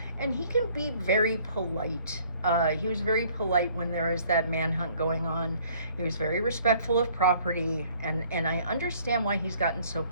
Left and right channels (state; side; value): inverted; both; correlation -0.58